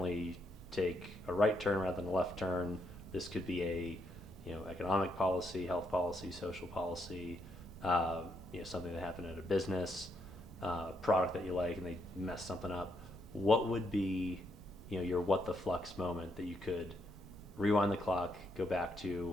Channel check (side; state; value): both; normal; correlation 0.78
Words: take a right turn rather than a left turn. This could be a economic policy, health policy, social policy, something that happened at a business, product that you like, and they mess something up. What would be, your what the flux moment that you could rewind the clock, go back